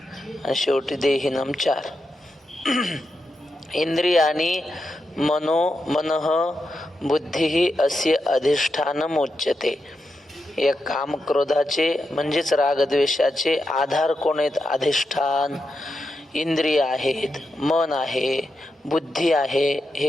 आणि शेवटी देहिनम चार. इंद्रियाणी मनः बुद्धी अस्य अधिष्ठानम उच्यते. या काम क्रोधाचे म्हणजेच रागद्वेषाचे आधार कोण आहेत? अधिष्ठान. इंद्रिय आहेत, मन आहे, बुद्धी आहे,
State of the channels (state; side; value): normal; both; correlation 0.86